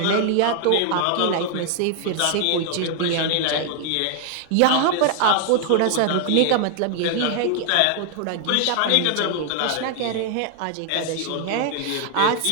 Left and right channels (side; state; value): both; different; correlation 0.00